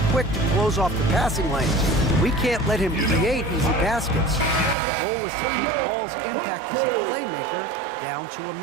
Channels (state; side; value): drops out; left; at 4.8 s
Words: quick to close off the passing lanes. We can't let him create easy baskets. The goal is to keep Ball's impact as a playmaker down to a